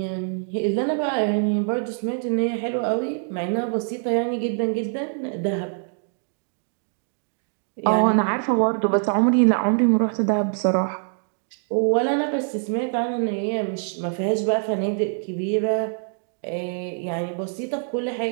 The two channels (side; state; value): left; silent; 62 dB below the other